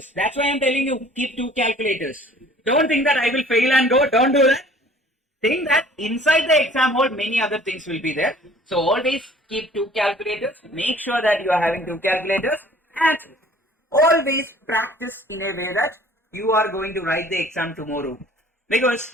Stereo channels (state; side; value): normal; both; correlation 0.52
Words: That's why I'm telling you, keep 2 calculators. Don't think that I will fail and go. Don't do that. Think that inside the exam hall, many other things will be there. So always keep 2 calculators. Make sure that you are having 2 calculators. And always practice in a way that you are going to write the exam tomorrow.